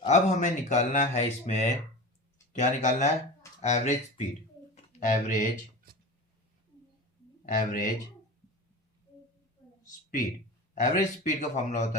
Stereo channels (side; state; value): both; normal; correlation 0.30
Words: अब हमें निकालना है इसमें, क्या निकालना है, average speed. Average speed, average speed का फॉर्मूला